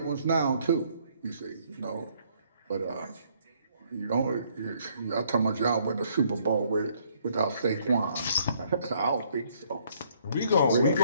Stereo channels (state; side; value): inverted; both; correlation -0.66